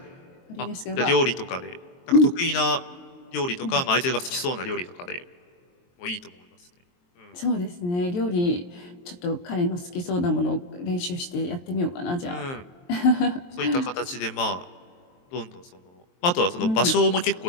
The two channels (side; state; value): right; late; 23 ms